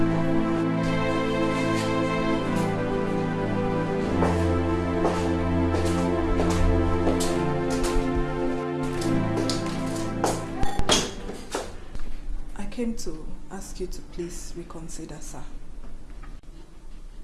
I came to ask you to please reconsider, sir.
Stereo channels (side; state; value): both; identical; correlation 1.00